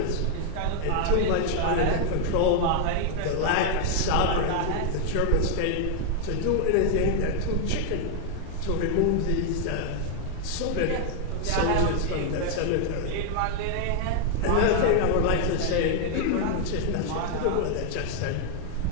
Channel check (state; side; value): different; both; correlation 0.00